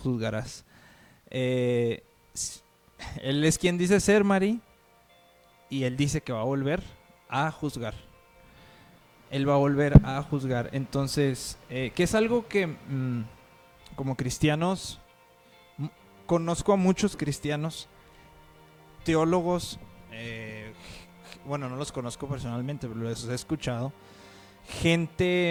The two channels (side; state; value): both; identical; correlation 1.00